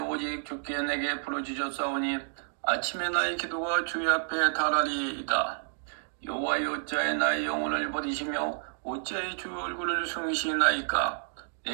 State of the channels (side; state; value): left; silent; digital silence